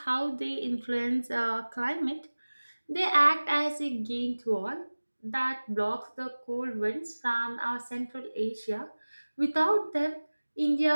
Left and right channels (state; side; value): inverted; both; correlation -1.00